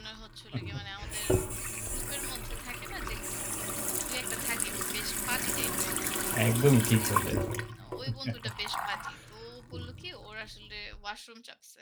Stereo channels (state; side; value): identical; both; correlation 1.00